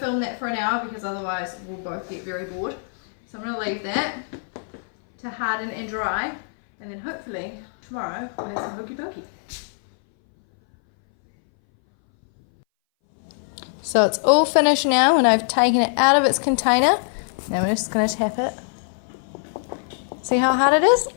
that for an hour because otherwise we'll both get very bored. So I'm going to leave that to harden and dry, and then hopefully tomorrow we'll have some Hokey Pokey. So it's all finished now and I've taken it out of its container. Now I'm just going to tap it. See how hard it is?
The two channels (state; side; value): silent; right; 61 dB below the other